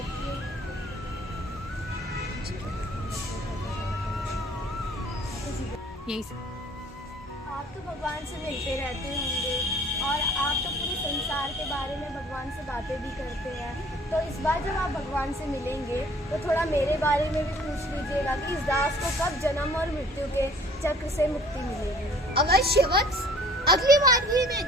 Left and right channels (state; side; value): normal; both; correlation 0.54